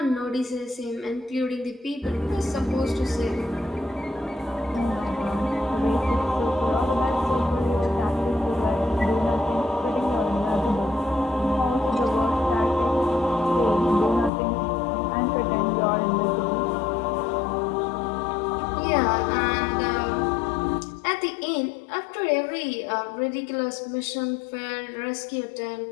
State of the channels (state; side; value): drops out; right; at 14.3 s